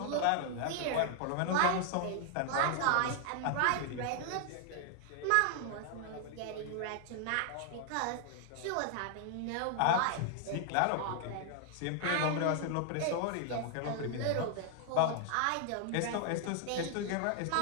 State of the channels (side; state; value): both; different; correlation 0.00